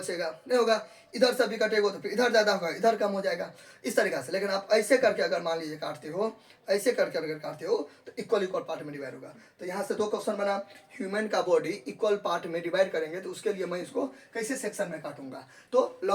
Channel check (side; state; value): both; identical; correlation 1.00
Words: नहीं होगा। इधर से भी कटेगा तो फिर इधर ज़्यादा होगा, इधर कम हो जाएगा, इस तरीक़ा से। लेकिन आप ऐसे करके अगर मान लीजिए काटते हो, ऐसे करके अगर काटते हो तो इक्वल इक्वल पार्ट में डिवाइड होगा। तो यहाँ से दो क्वेश्चन बना, ह्यूमन का बॉडी इक्वल पार्ट में डिवाइड करेंगे तो उसके लिए मैं इसको कैसे सेक्शन में काटूंगा? तो